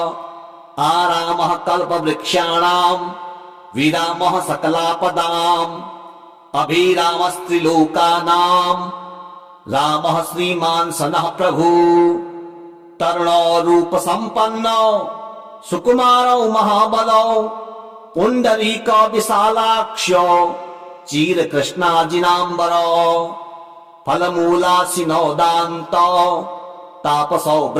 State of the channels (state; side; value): identical; both; correlation 1.00